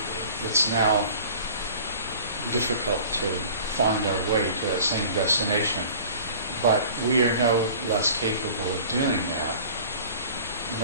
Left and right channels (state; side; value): inverted; both; correlation -0.44